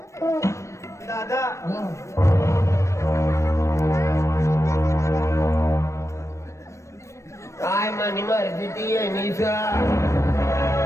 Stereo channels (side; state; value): right; late; 0.14 ms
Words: दादा काय मनी मर्जी ती येणीच